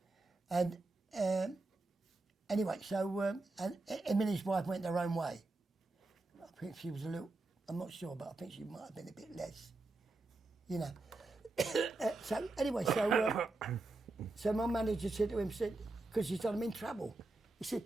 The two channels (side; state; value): left; quieter; 3.2 dB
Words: And anyway, so and him and his wife went their own way. I think she was a little, I'm not sure, but I think she might have been a bit less, you know. So anyway, so my manager said to him, because he said, I'm in trouble. He said,